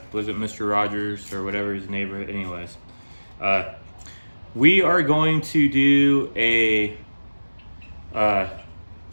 was it Mr. Rogers or whatever his neighborhood? Anyways, we are going to do a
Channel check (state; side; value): inverted; both; correlation -1.00